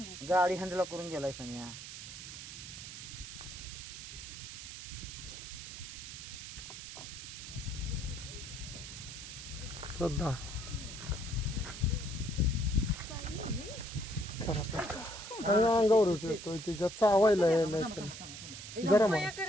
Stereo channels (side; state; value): right; noise; hiss, 10 dB below the sound